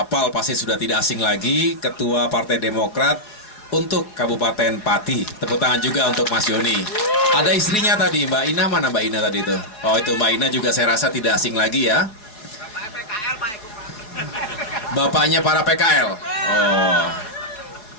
pasti sudah tidak asing lagi, Ketua Partai Demokrat untuk Kabupaten Pati. Tepuk tangan juga untuk Mas Joni. Ada istrinya tadi, Mbak Ina. Mana Mbak Ina tadi itu? Oh, itu Mbak Ina juga saya rasa tidak asing lagi ya. Bapaknya para PKL. Oh.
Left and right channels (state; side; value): late; right; 4.6 ms